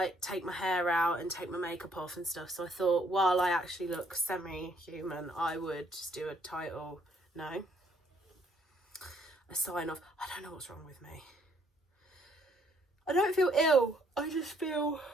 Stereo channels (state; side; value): normal; both; correlation 0.67